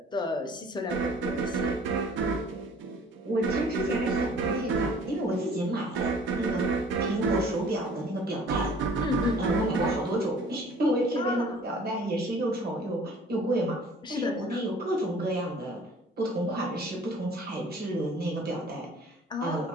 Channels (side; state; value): both; normal; correlation 0.52